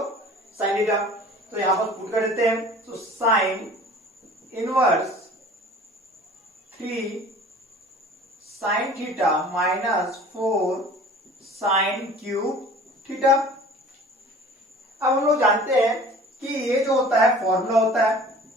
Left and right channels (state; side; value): normal; both; correlation 0.45